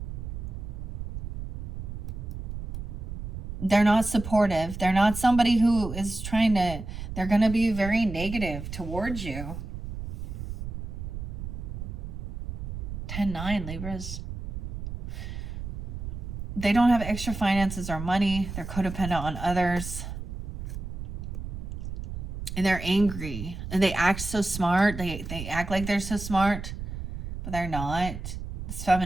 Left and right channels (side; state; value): right; noise; rumble, 7 dB below the sound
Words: They're not supportive. They're not somebody who is trying to, they're going to be very negative towards you. 10-9, Libras. They don't have extra finances or money. They're codependent on others. And they're angry. And they act so smart. They act like they're so smart, but they're not. This